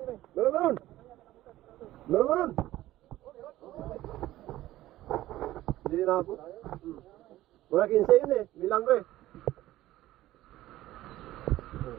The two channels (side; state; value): left; quieter; 15.4 dB